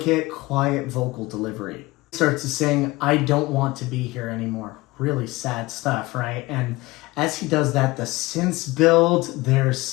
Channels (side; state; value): right; quieter; 20.9 dB